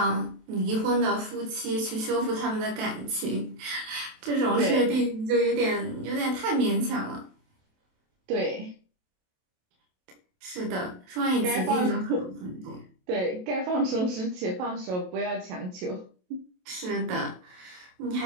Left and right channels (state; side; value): late; left; 27 ms